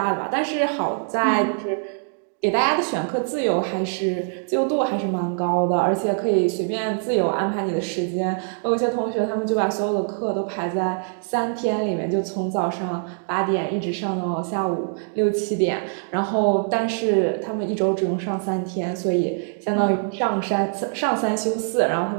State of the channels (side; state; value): left; silent; 63 dB below the other